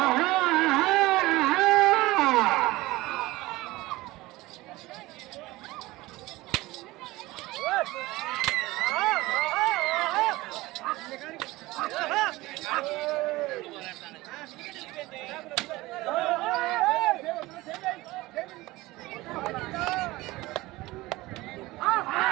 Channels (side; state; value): left; quieter; 19.5 dB